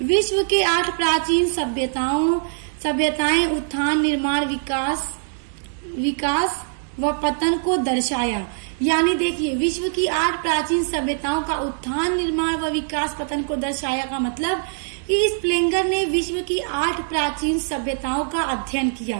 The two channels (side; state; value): left; silent; digital silence